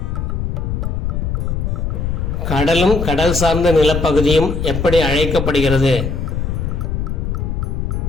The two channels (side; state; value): left; noise; rumble, 1 dB below the sound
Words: கடலும் கடல் சார்ந்த நிலப்பகுதியும் எப்படி அழைக்கப்படுகிறது?